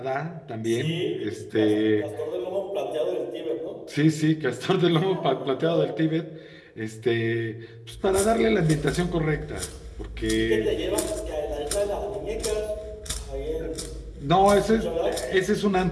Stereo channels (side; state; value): both; identical; correlation 1.00